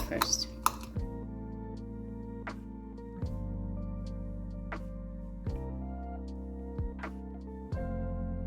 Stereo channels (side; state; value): both; identical; correlation 1.00